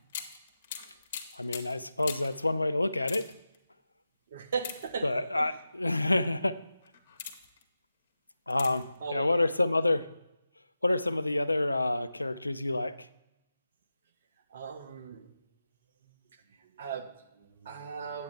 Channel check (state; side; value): inverted; both; correlation -0.92